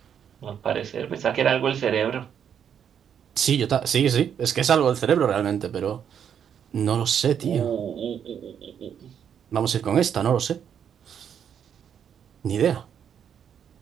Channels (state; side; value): quieter; left; 8.4 dB